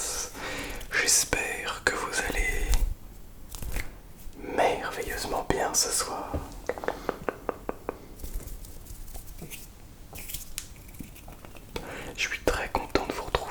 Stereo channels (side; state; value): both; identical; correlation 1.00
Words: J'espère que vous allez merveilleusement bien ce soir. Je suis très content de vous